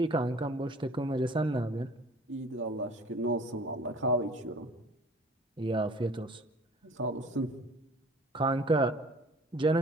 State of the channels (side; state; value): both; normal; correlation 0.48